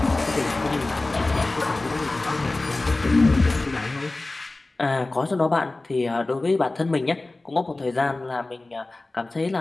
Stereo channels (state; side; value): quieter; right; 3.0 dB